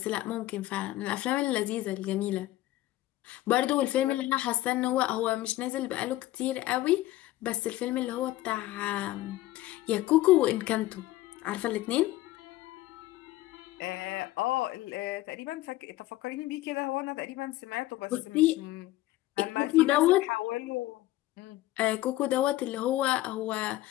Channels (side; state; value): right; quieter; 16.3 dB